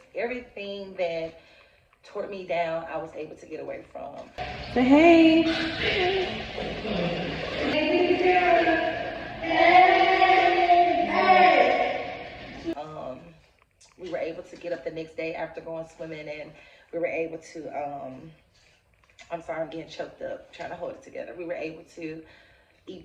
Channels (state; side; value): identical; both; correlation 1.00